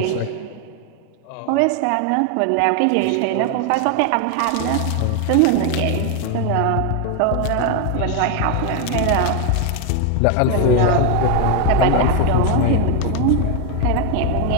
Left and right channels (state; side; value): different; both; correlation 0.01